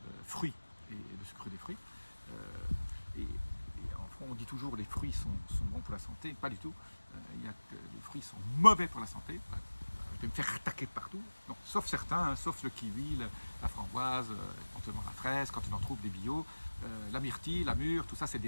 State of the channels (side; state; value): both; inverted; correlation -1.00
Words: fruits et le sucre des fruits. Et on dit toujours les fruits sont bons pour la santé, pas du tout. Il y a que les fruits sont mauvais pour la santé. Je vais me faire attaquer partout, donc, sauf certains, hein, sauf le kiwi, la framboise, éventuellement la fraise, quand on en trouve des bio, la myrtille, la mûre, tout ça c'est